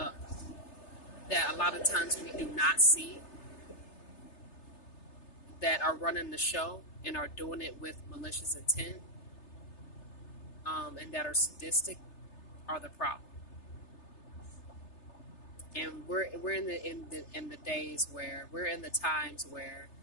that a lot of times we do not see, that are running the show and are doing it with malicious intent, and that are sadistic, are the problem. And we're in the days where we're in the times where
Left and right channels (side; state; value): right; late; 3.3 ms